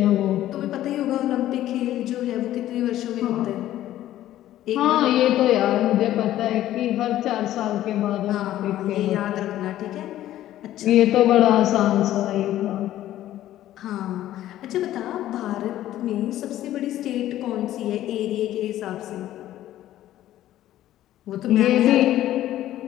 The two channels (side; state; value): right; quieter; 13.4 dB